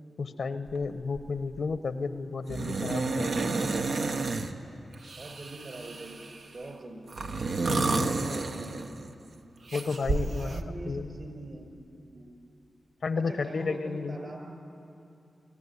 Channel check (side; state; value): both; normal; correlation 0.87